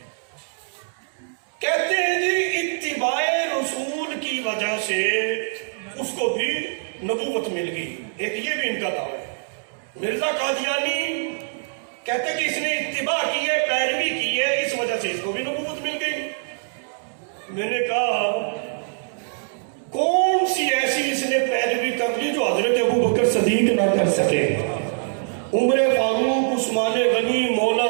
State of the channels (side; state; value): left; silent; digital silence